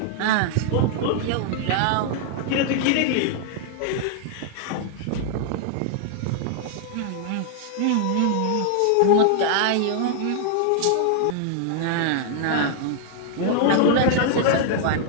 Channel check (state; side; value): different; both; correlation -0.01